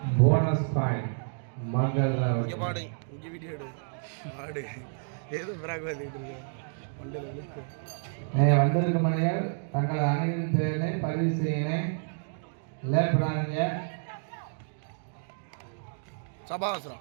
போனஸ் பாயிண்ட் மங்கள்ராவ். இங்க பாடு இங்க வீடியோ எடு பாடு ஏதோ பிராக் வந்துட்டு இருக்கு மண்டல விழுக்கு. வந்திருக்கும் மணிகள் தங்கள் அணியின் பெயரை பதிவு செய்யணும். லேட் பண்ணாதீங்க. சபாஸ்ரா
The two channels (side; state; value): left; silent; digital silence